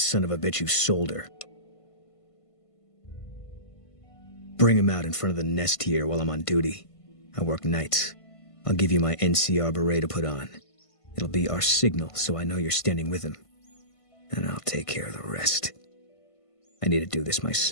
of a bitch who sold her. Bring him out in front of the nest here while I'm on duty. I work nights. I'll give you my NCR beret to put on. It'll be our signal so I know you're standing with him. And I'll take care of the rest. I need to do this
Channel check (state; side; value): late; right; 1.5 ms